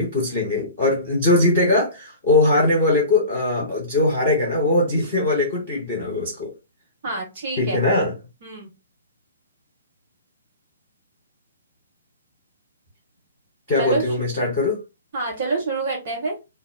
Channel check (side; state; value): both; inverted; correlation -0.36